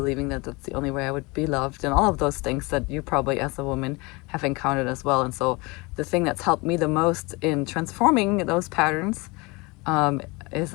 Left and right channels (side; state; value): right; quieter; 25.9 dB